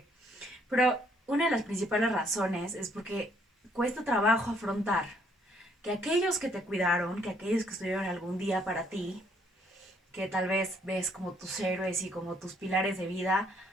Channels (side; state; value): both; normal; correlation 0.67